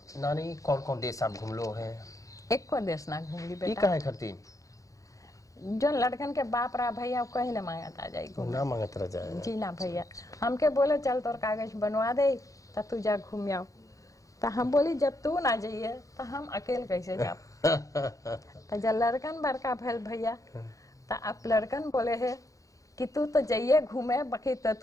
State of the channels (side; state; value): right; late; 0.16 ms